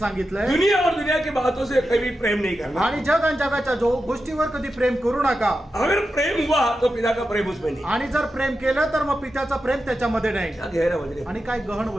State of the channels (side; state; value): both; normal; correlation 0.90